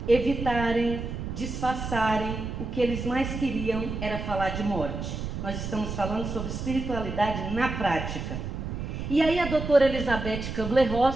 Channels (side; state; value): right; noise; rumble, 5 dB below the sound